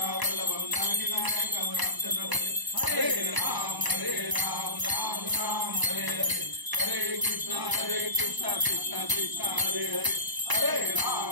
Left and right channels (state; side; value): late; left; 1.0 ms